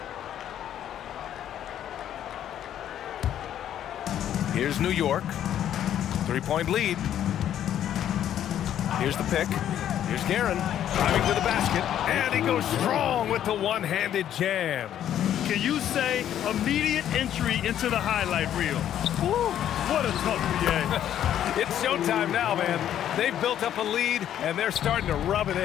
Here's New York. 3-point lead. Here's the pick. Here's Guerin driving to the basket, and he goes strong with the one-handed jam. Can you say immediate entry into the highlight reel? Woo, what a tough PA. It's showtime now, man. They've built up a lead, and they're starting to rub it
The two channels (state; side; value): quieter; right; 10.7 dB